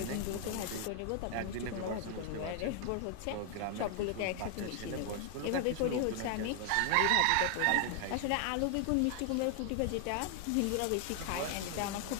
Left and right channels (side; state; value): both; different; correlation 0.00